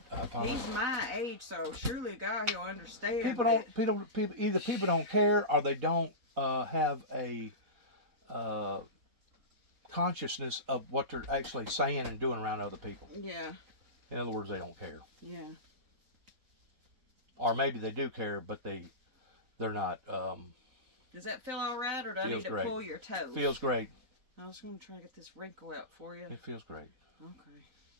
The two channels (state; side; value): late; left; 4.1 ms